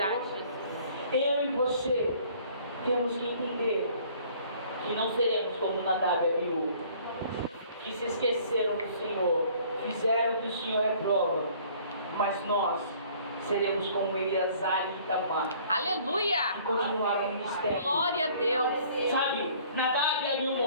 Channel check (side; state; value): both; inverted; correlation -0.55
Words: Eu e você temos que entender que não seremos como Nadab e Abiú, que se esqueceram do Senhor, fizeram que o Senhor reprova, mas nós seremos como Eleazar e Itamar, Aleluia. que continuaram no ministério. Glória a Deus. Sabe, Nadab e Abiú